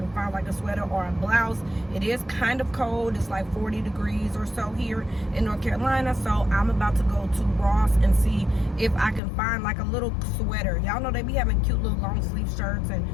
find like a sweater or a blouse. It is kind of cold. It's like 40 degrees or so here in North Carolina. So I'm about to go to Ross and see if I can find like a little sweater. Y'all know they be having cute little long sleeve shirts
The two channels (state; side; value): drops out; right; at 9.2 s